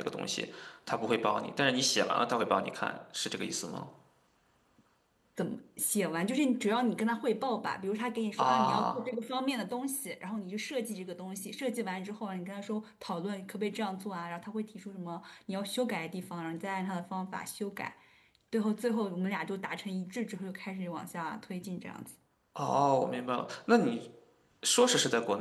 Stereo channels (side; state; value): both; identical; correlation 1.00